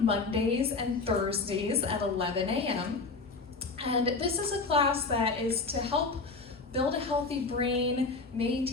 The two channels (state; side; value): quieter; right; 4.0 dB